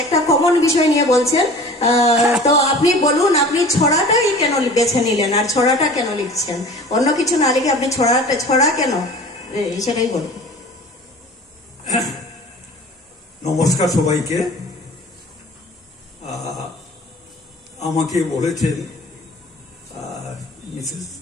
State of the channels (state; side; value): normal; both; correlation 0.42